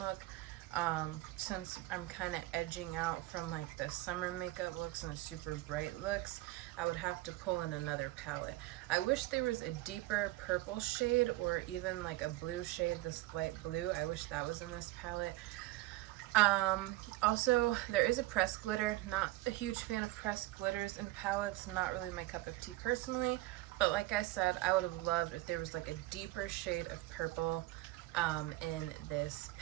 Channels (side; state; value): left; quieter; 18.4 dB